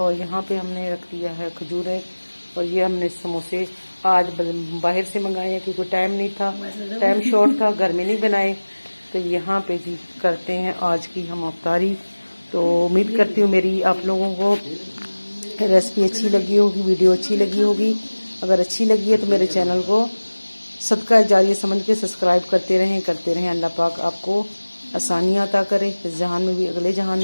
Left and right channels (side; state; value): both; inverted; correlation -1.00